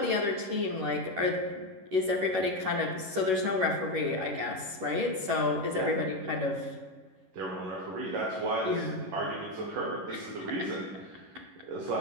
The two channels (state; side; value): late; left; 11 ms